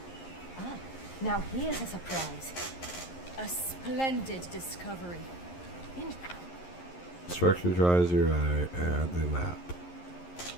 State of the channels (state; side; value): late; right; 11 ms